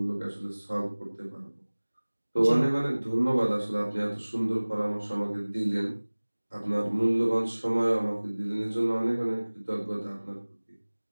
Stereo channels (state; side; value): inverted; both; correlation -1.00